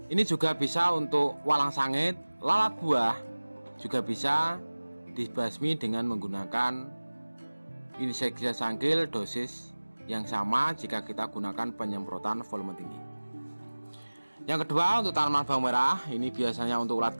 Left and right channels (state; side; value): inverted; both; correlation -1.00